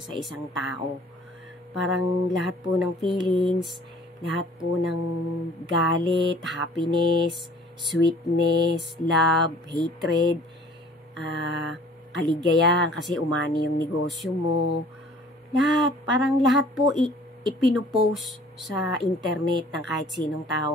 sa isang tao. Parang lahat po ng feelings, lahat po ng galit, happiness, sweetness, love, hatred, kaligayahan kasi umani yung negosyo mo. Parang lahat po ipinupost sa internet ng kahit sinong tao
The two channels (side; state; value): both; normal; correlation 0.52